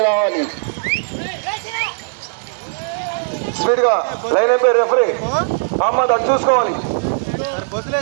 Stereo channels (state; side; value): silent; left; 66 dB below the other